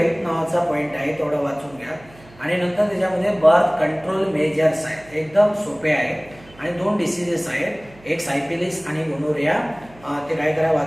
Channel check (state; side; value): noise; right; hum, 24 dB below the sound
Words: नावाचा पॉईंट आहे, तेवढं वाचून घ्या. आणि नंतर त्याच्यामध्ये बर्थ कंट्रोल मेजर्स आहेत, एकदम सोपे आहेत. आणि 2 डिसीजेस आहेत, एक सायफिलिस आणि गोनोरिया. ते काय करा